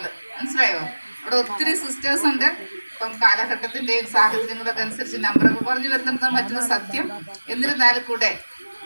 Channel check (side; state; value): both; inverted; correlation -1.00